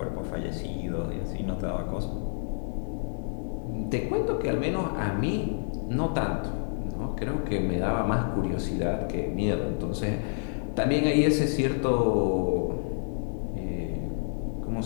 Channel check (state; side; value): silent; right; digital silence